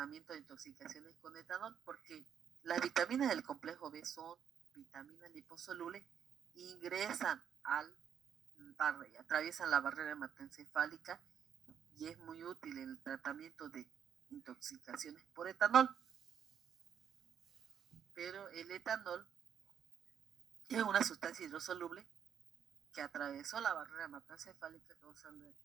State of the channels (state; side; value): quieter; left; 8.5 dB